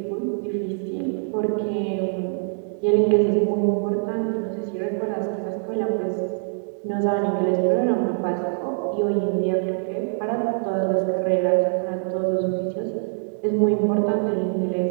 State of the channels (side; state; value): left; silent; digital silence